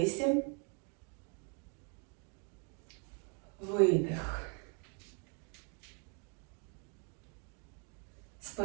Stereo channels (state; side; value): quieter; left; 38.1 dB